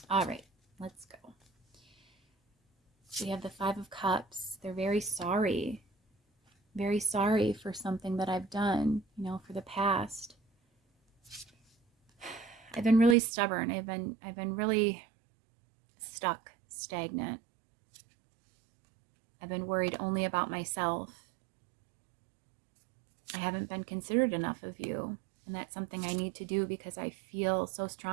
All right, let's go. We have the 5 of Cups. They're very sorry for something that I've done, for the past. I've been really stubborn. I've been really stuck, stagnant. I've been worried only about myself. I haven't been considerate enough of you, and that's something I need to do because I feel so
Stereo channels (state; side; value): drops out; left; at 13.2 s